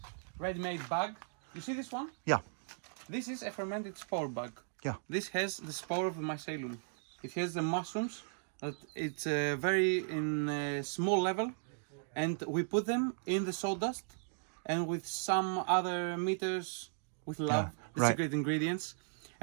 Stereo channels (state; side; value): silent; left; digital silence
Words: ready-made bag. You see this one? Yeah. This is a fermented spore bag. Yeah. This has the spore of the mycelium. It has the mushrooms. It's very in a small level, and we put them in the sawdust, and with some other meters with love, the secret ingredients,